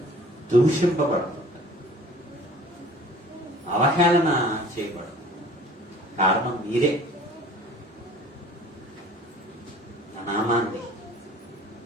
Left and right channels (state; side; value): normal; both; correlation 0.48